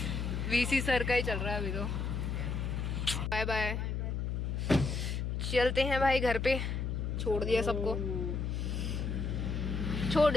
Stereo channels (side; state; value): left; noise; hum, 1 dB below the sound